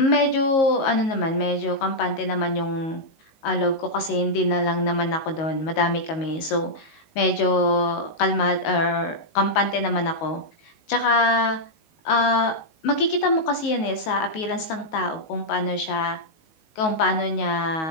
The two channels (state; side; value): late; right; 19 ms